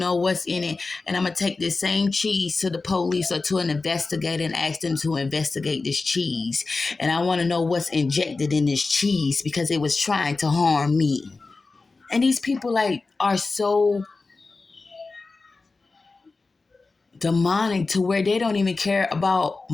what's in it. And I'm gonna take this same cheese to the police or to an investigator and ask them to investigate this cheese. And I want to know what's injected in this cheese because it was trying to harm me. And these people are so demonic to where they don't even care about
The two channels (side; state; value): right; quieter; 3.8 dB